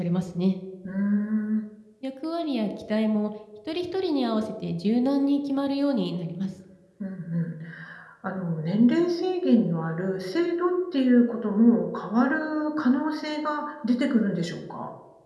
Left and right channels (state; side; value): identical; both; correlation 1.00